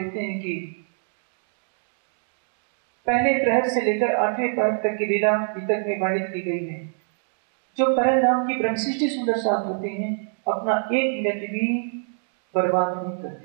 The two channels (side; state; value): left; silent; digital silence